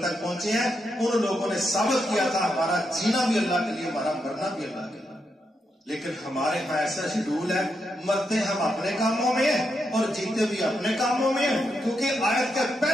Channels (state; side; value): normal; both; correlation 0.82